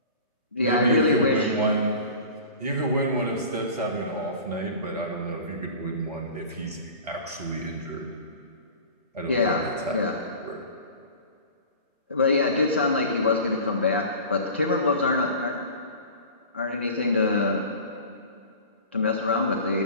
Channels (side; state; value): both; inverted; correlation -0.39